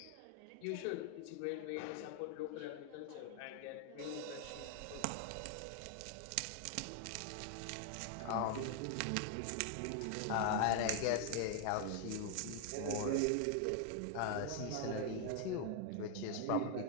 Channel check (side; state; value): both; different; correlation 0.00